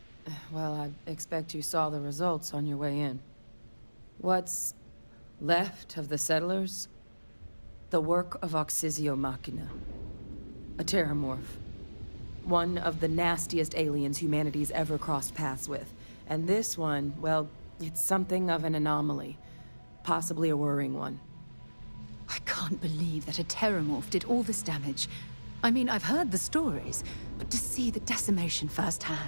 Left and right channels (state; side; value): inverted; both; correlation -1.00